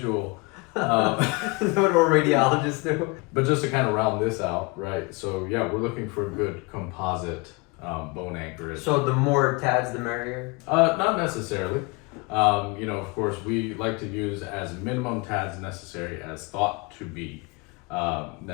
That's what our radiologists do. But just to kind of round this out, right? So yeah, we're looking for a good composite bone anchorage. So the more TADs, the merrier? Not necessarily. You know, of course, we like to use as minimum TADs necessary as thought to be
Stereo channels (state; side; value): quieter; right; 27.9 dB